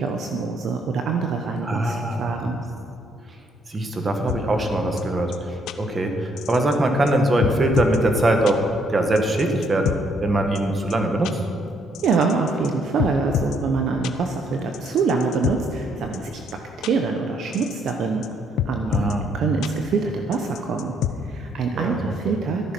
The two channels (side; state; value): both; normal; correlation 0.70